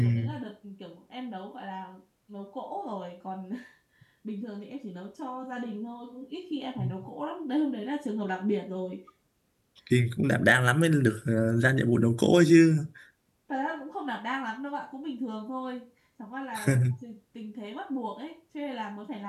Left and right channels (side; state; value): both; identical; correlation 1.00